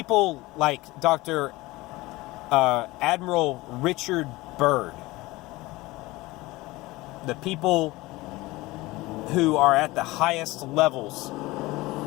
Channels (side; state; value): right; quieter; 20.4 dB